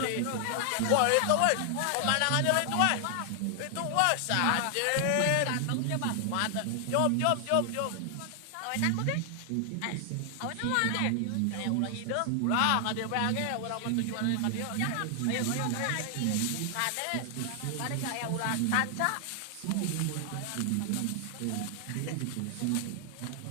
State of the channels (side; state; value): both; different; correlation 0.00